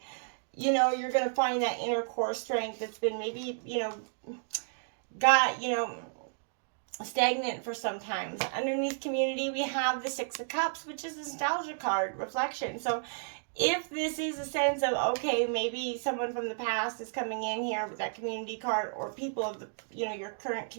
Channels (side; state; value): left; silent; digital silence